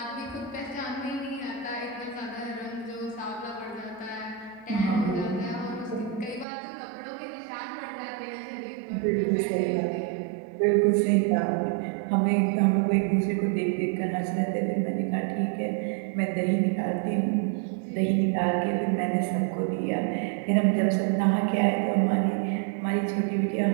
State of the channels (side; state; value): left; drops out; at 6.5 s